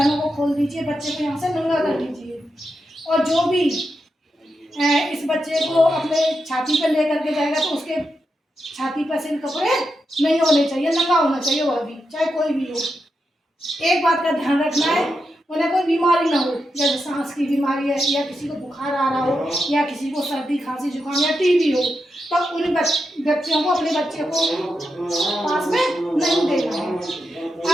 को खोल दीजिए, बच्चे को यहाँ से नंगा कर दीजिए। और जो भी इस बच्चे को अपने छाती पर लेकर के जाएगा तो उसके छाती पर से कपड़े नहीं होने चाहिए, नंगा होना चाहिए वह भी, चाहे कोई भी हो। एक बात का ध्यान रखना है, उन्हें कोई बीमारी ना हो, जैसे सांस की बीमारी है या किसी को बुखार आ रहा हो या किसी को सर्दी खांसी जुकाम या TB हो, तो उन व्यक्तियों को अपने बच्चे को पास में नहीं देना है।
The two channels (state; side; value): normal; both; correlation 0.86